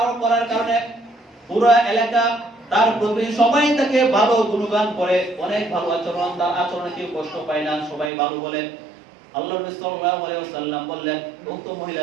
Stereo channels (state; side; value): drops out; left; at 8.1 s